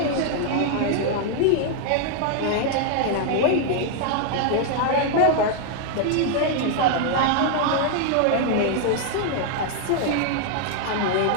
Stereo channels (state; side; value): different; both; correlation 0.00